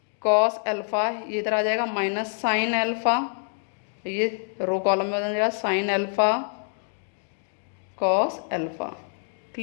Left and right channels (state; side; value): silent; right; 61 dB below the other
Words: कॉस एल्फा, ये इधर आ जाएगा माइनस साइन एल्फा, ये रो कॉलम में हो जाएगा sign alpha cos alpha.